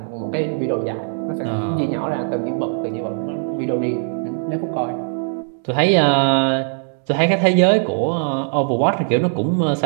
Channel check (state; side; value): silent; left; digital silence